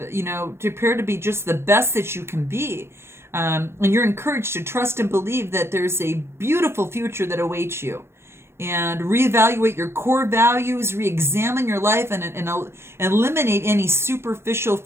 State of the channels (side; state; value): left; late; 0.12 ms